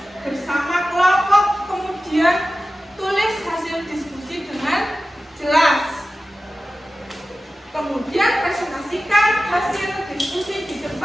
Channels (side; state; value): both; normal; correlation 0.95